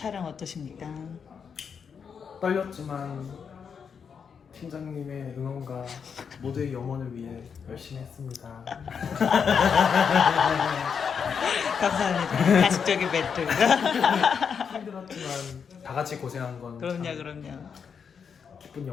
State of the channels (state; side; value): quieter; right; 6.6 dB